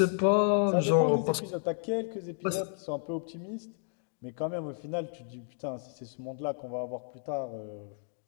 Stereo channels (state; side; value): silent; right; digital silence